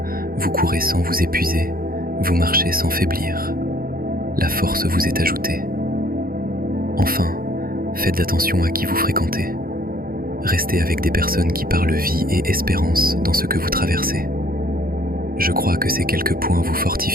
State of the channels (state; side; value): late; left; 0.42 ms